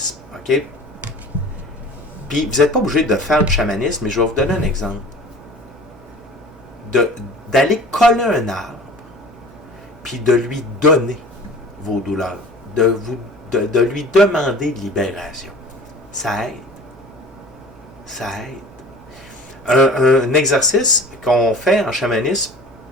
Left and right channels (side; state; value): both; normal; correlation 0.43